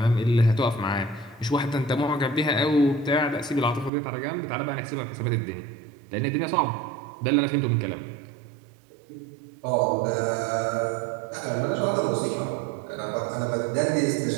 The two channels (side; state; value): left; drops out; at 3.9 s